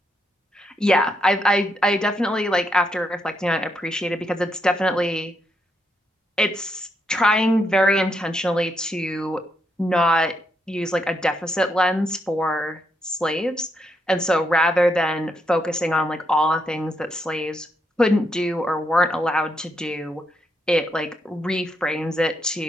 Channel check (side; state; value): both; normal; correlation 0.79